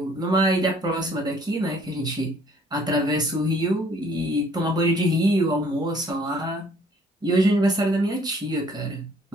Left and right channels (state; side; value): normal; both; correlation 0.59